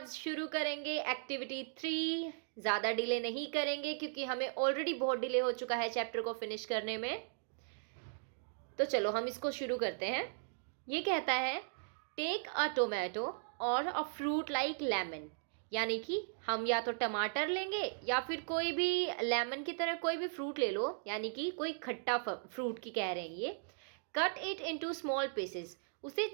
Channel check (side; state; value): left; silent; digital silence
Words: शुरू करेंगे एक्टिविटी 3। ज़्यादा डिले नहीं करेंगे क्योंकि हमें ऑलरेडी बहुत डिले हो चुका है चैप्टर को फिनिश करने में। तो चलो हम इसको शुरू करते हैं। ये कहता है टेक अ टोमेटो और अ फ्रूट लाइक लेमन, यानी कि हम या तो टमाटर लेंगे या फिर कोई भी लेमन की तरह कोई भी फ्रूट ले लो, यानी कि कोई खट्टा फ्रूट की कह रहे हैं ये। Cut it into small pieces, उसे